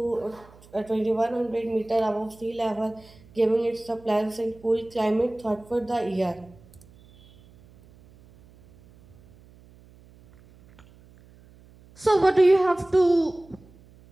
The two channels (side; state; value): right; noise; hum, 26 dB below the sound